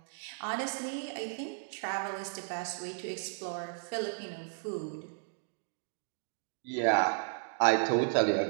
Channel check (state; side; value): silent; left; digital silence